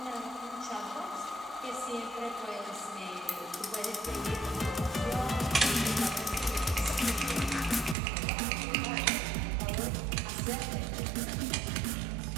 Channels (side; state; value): left; drops out; at 8.0 s